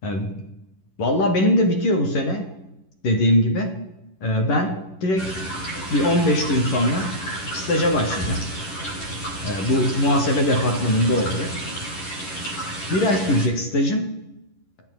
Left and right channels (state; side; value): late; right; 11 ms